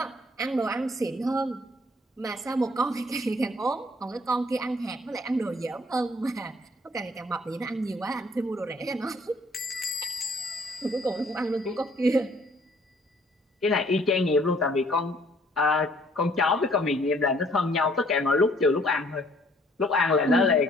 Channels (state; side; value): normal; both; correlation 0.61